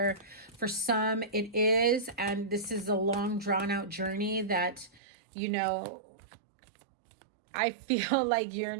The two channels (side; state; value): left; drops out; at 5.0 s